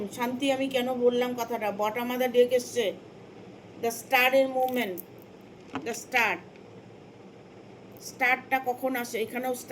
শান্তি আমি কেন বললাম কথাটা, বটম অফ দ্য ডেক এসছে দ্য স্টারের মুভমেন্ট, দ্য স্টারটা কখন আসে? এখানেও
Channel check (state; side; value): identical; both; correlation 1.00